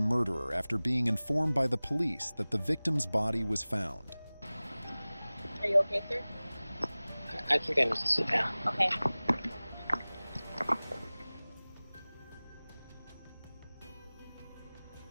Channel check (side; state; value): both; inverted; correlation -0.99